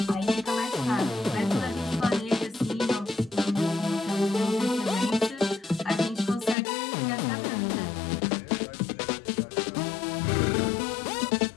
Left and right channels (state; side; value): drops out; right; at 6.6 s